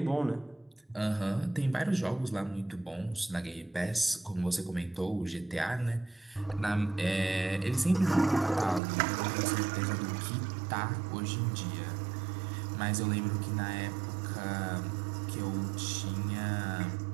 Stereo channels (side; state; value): left; drops out; at 8.8 s